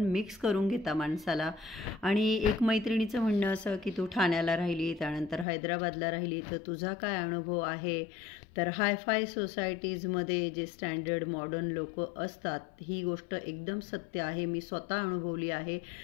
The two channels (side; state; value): right; drops out; at 5.5 s